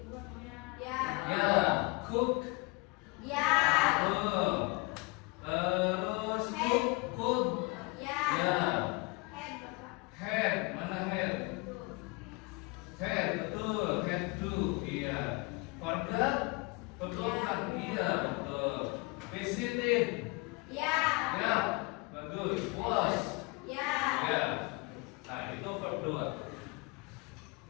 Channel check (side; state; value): right; quieter; 26.7 dB